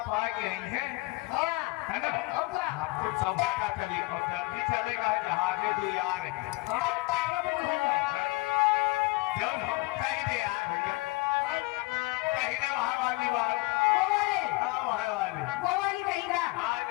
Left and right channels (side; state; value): right; quieter; 23.2 dB